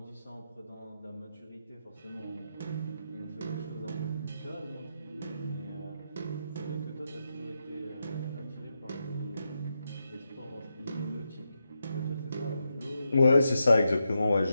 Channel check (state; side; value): inverted; both; correlation -0.86